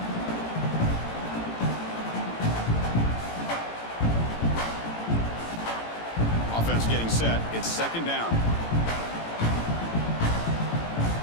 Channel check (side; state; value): right; late; 18 ms